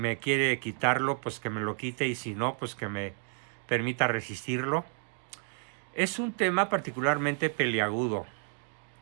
quiere quitarlo, pues que me lo quite y si no, pues que me permita resistirlo. Es un tema particularmente peliagudo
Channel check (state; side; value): silent; left; 57 dB below the other